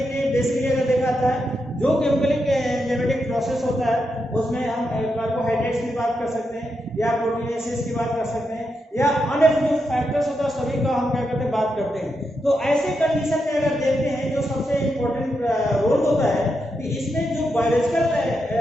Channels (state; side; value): normal; both; correlation 0.84